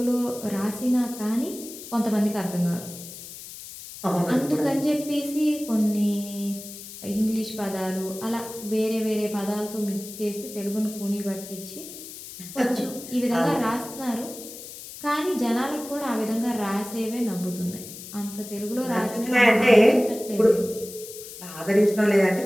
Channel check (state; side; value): noise; left; hiss, 13 dB below the sound